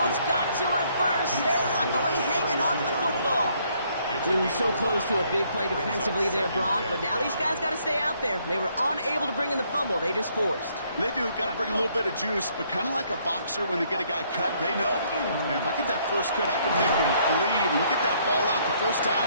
got to it first. They're luckily hanging on to the football. Ooh, so close to a big play defensively there, Brock, but now these guys got to stay out there. They were unable to bring in the fumble. They just forced. They do. Got to bring a little bit of juice, but kind of like a boxer when they get a guy cut, they know. Man, if I get that first cut, I can make him bleed. And you get that ball out the first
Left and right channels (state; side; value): inverted; both; correlation -0.68